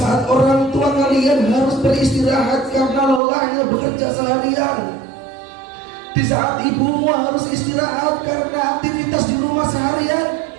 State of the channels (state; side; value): drops out; left; at 3.2 s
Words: orang tua kalian harus beristirahat karena lelahnya bekerja seharian, di saat ibumu harus istirahat karena aktivitas di rumah seharian,